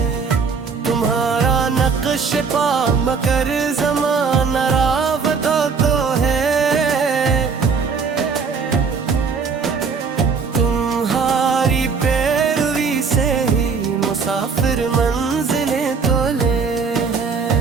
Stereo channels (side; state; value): left; quieter; 5.3 dB